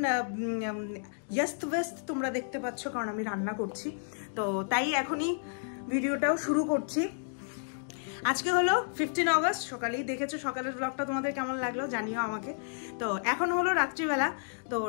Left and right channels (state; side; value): silent; right; digital silence